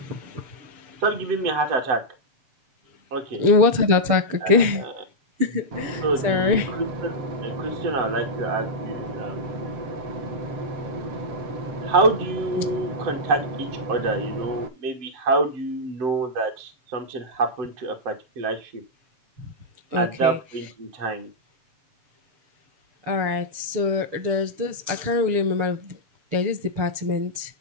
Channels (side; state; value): left; late; 6.9 ms